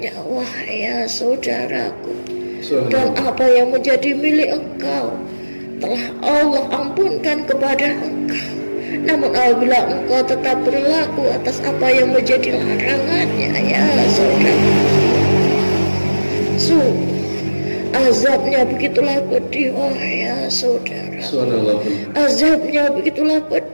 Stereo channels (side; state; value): both; inverted; correlation -1.00